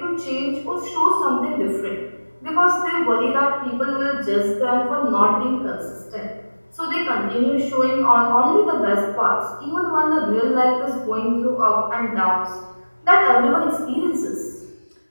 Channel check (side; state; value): both; inverted; correlation -1.00